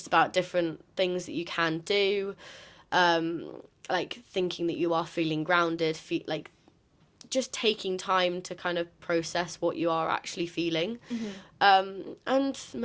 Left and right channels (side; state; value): both; identical; correlation 1.00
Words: about different things that you can do. Like thinking that you are feeling grounded, like just taking time to kind of process what you are actually feeling. And